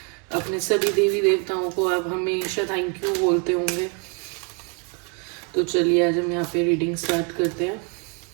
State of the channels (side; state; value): left; quieter; 36.6 dB